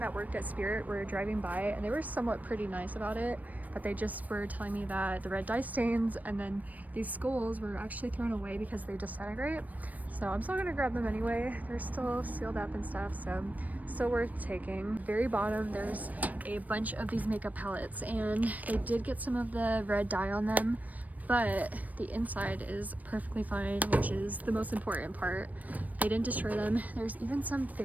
worked at Spirit were driving by, and they were somewhat pretty nice about it, but they just were telling me that the red dye stains and then these skulls were actually thrown away because they disintegrate. So I'm still gonna grab them anyway. They're still sealed up and stuff, so still worth taking. Very bottom, there's a bunch of these makeup palettes, and they did get some of the red dye on them, but the inside is perfectly fine, which is the most important part. They didn't destroy them. There's even some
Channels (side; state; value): left; late; 0.075 ms